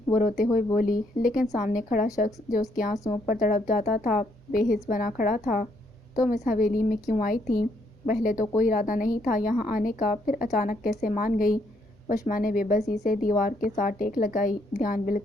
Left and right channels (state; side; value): normal; both; correlation 0.72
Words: وہ روتے ہوئے بولی۔ لیکن سامنے کھڑا شخص جو اس کے آنسوؤں پر تڑپ جاتا تھا بے حس بنا کھڑا تھا۔ تم اس حویلی میں کیوں آئی تھی؟ پہلے تو کوئی ارادہ نہیں تھا یہاں آنے کا، پھر اچانک کیسے مان گئی؟ وشما نے بے بسی سے دیوار کے ساتھ ٹیک لگائی۔ دھیان